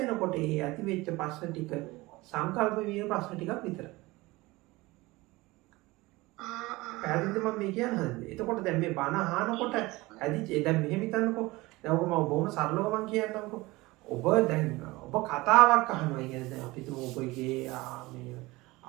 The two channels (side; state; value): left; quieter; 21.1 dB